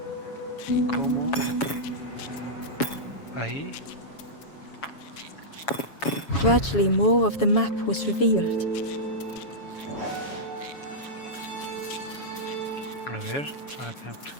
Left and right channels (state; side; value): late; right; 7.2 ms